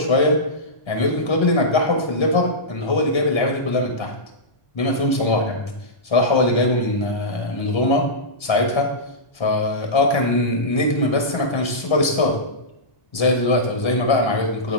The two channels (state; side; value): late; right; 1.3 ms